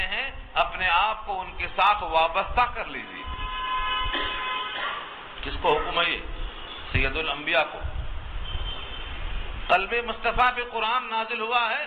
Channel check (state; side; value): identical; both; correlation 1.00